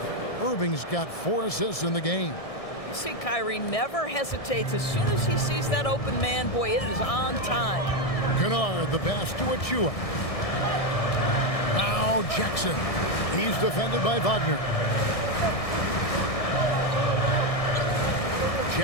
Irving's got 4 assists in the game. You see, Kyrie never hesitates. As soon as he sees that open man, boy, it is on time. Kennard, the pass to Achiuwa. Now Jackson. He's defended by Wagner.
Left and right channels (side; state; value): right; late; 1.6 ms